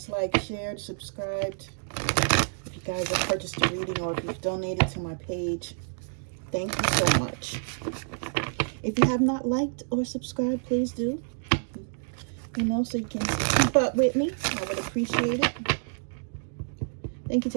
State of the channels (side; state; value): left; silent; digital silence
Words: liked, shared, subscribed. If you guys have purchased a reading or if you've donated to my page, thank you so much. If you have not liked or subscribed, please do. So you can keep up with me. I would appreciate it. Thank you